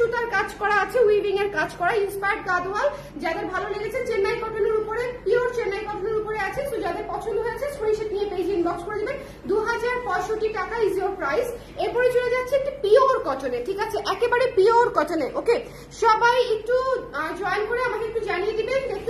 কাজ করা আছে, উইভিং এর কাজ করা, ইন্সপায়ার্ড গাদোয়াল। যাদের ভালো লেগেছে চেন্নাই কটনের উপরে, পিওর চেন্নাই কটনের উপরে আছে। তো যাদের পছন্দ হয়েছে স্ক্রিনশট নিয়ে পেজে ইনবক্স করে দিবেন। 2065 টাকা ইজ ইওর প্রাইস। এরপরে চলে যাচ্ছে একটি পিওর কটনে, ঠিক আছে, একেবারে পিওর কটনে। ওকে, সবাই একটু জয়েন করে আমাকে একটু জানিয়ে দিবেন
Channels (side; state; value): both; identical; correlation 1.00